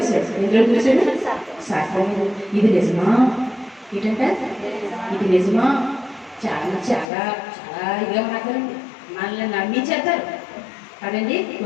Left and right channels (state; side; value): drops out; right; at 7.1 s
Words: ఎందులో వదిలేశాడు సర్పం. ఇది నిజమా ఏంటంటే ఇది నిజమా చాలా చాలా చాలా ఇదిగా మాట్లాడండి మనల్ని నమ్మించేస్తారు కదండి.